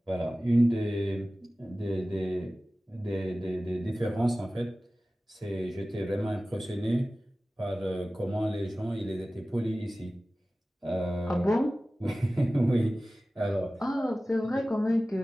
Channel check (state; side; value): normal; both; correlation 0.97